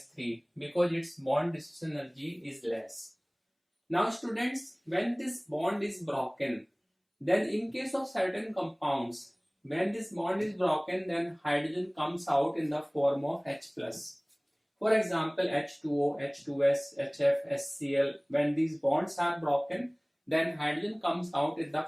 because its bond dissociation energy is less. Now students, when this bond is broken, then in case of certain compounds, When this bond is broken, then hydrogen comes out in the form of H plus. For example, H2O, H2S, HF, HCl. When these bonds are broken, then hydrogen comes out in the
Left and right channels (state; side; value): identical; both; correlation 1.00